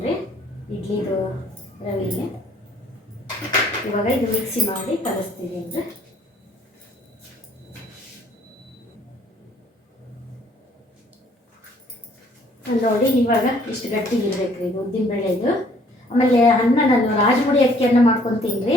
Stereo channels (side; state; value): both; normal; correlation 0.60